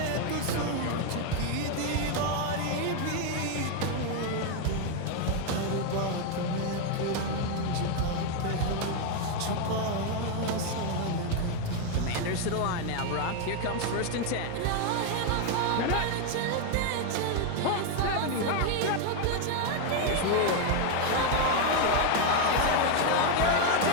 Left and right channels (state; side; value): different; both; correlation 0.01